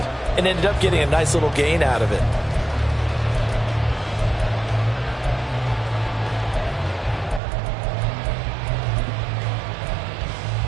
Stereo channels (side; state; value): left; drops out; at 7.4 s